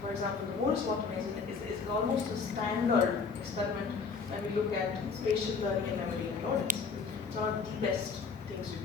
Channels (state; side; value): quieter; right; 5.2 dB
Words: For example, the Moore's Water is almost a standard experiment when we look at spatial learning and memory in rodents. It's one of the best things you